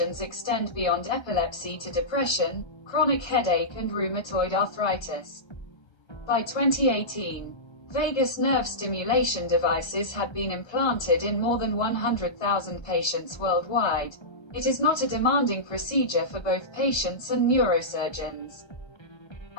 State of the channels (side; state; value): right; late; 1.3 ms